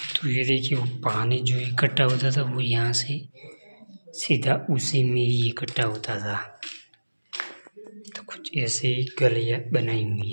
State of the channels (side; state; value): both; inverted; correlation -1.00